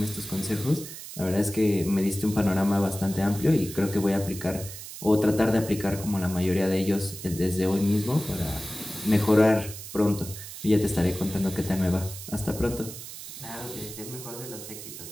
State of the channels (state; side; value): noise; right; hiss, 12 dB below the sound